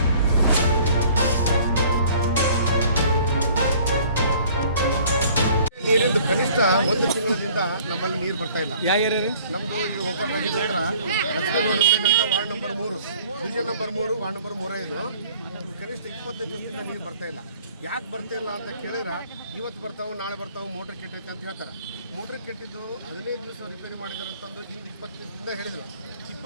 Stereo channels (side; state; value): both; inverted; correlation -0.54